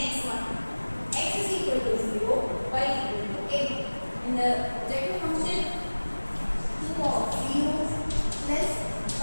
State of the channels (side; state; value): both; inverted; correlation -1.00